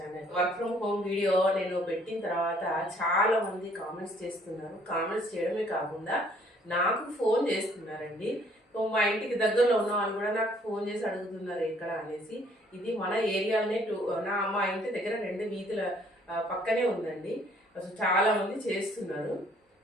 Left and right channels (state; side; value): normal; both; correlation 0.61